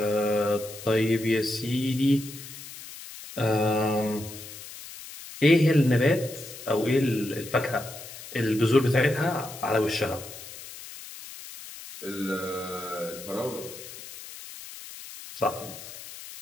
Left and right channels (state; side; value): noise; left; hiss, 14 dB below the sound